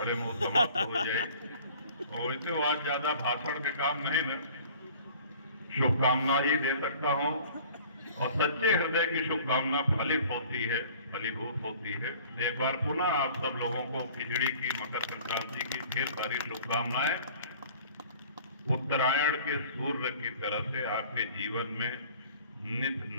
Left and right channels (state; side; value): inverted; both; correlation -0.49